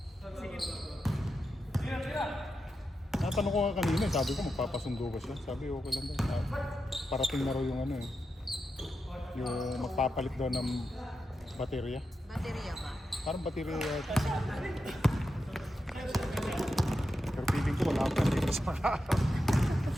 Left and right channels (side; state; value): both; normal; correlation 0.88